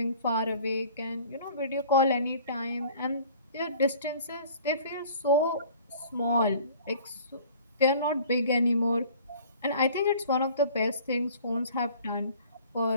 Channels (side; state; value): both; inverted; correlation -0.49